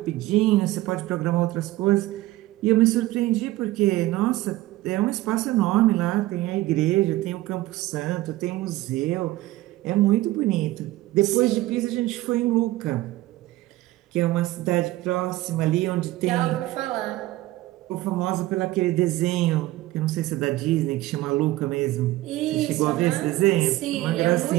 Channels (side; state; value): left; quieter; 17.0 dB